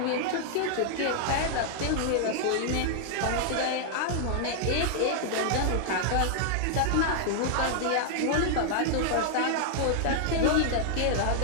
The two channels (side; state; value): both; different; correlation -0.01